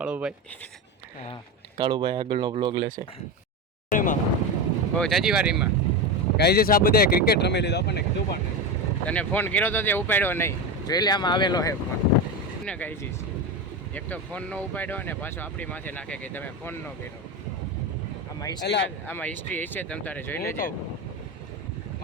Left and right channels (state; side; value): normal; both; correlation 0.19